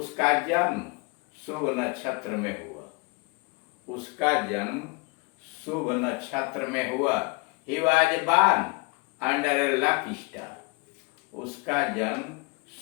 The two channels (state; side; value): quieter; right; 28.9 dB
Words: जन्म शुभ नक्षत्र में हुआ। उसका जन्म शुभ नक्षत्र में हुआ। He was born under a lucky star. उसका जन्म